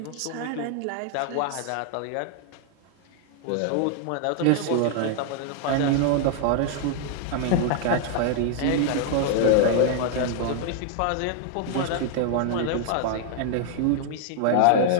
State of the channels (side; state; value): both; different; correlation 0.00